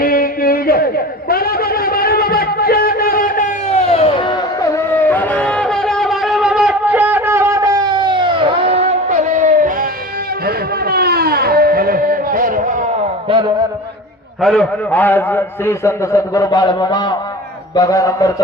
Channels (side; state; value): both; normal; correlation 0.34